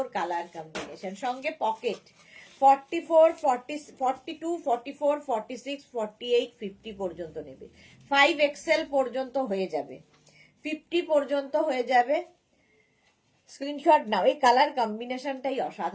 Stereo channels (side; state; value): both; identical; correlation 1.00